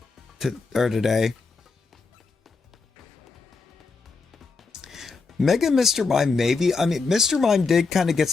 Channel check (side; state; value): right; quieter; 4.4 dB